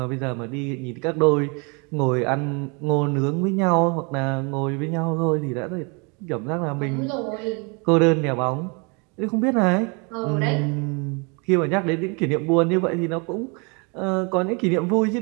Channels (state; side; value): quieter; left; 32.4 dB